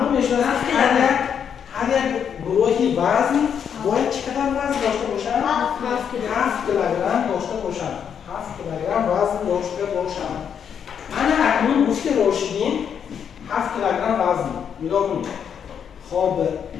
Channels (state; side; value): quieter; right; 7.9 dB